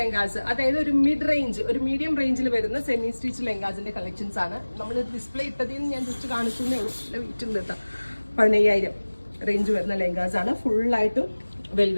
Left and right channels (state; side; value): inverted; both; correlation -1.00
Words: അതായത് ഒരു മീഡിയം റേഞ്ചിൽ വരുന്ന സെമി സ്റ്റിച്ച് ലെഹങ്കാസിന്റെ കളക്ഷൻസ് ആണ് നമ്മൾ ഡിസ്പ്ലേ ഇട്ടതിൽ നിന്ന് ഞാൻ ജസ്റ്റ് കാണിക്കുന്നേ ഉള്ളൂ. നല്ല വെയിറ്റ് ഉണ്ട് കേട്ടോ. 15,000 റേഞ്ച് വരുന്ന ലെഹങ്കാസ് ആണ്. ഫുള്ളായിട്ടും